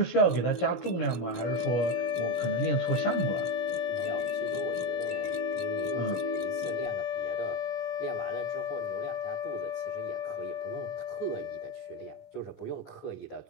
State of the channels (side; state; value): right; late; 17 ms